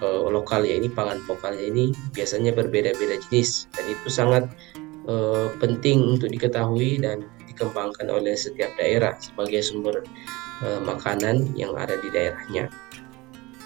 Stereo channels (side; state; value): left; quieter; 22.2 dB